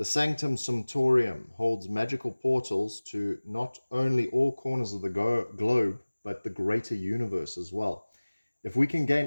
Sanctum Sumptorium holds magical portals to not only all corners of the globe, but the greater universe as well. If we can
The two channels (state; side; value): inverted; both; correlation -1.00